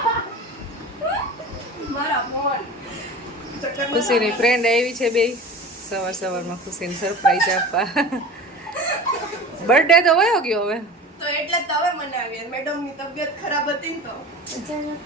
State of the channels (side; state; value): both; normal; correlation 0.36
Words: મારા ફોન. ખુશીની ફ્રેન્ડ આવી છે બે સવારમાં ખુશીને સરપ્રાઈઝ આપવા. બર્થડે તો વયો ગયો હવે તો એટલે તો હવે મનાવીએ. મેડમની તબિયત ખરાબ હતી ને તો